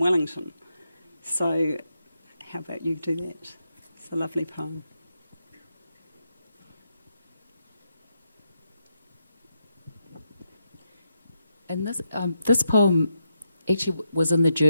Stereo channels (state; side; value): inverted; both; correlation -0.84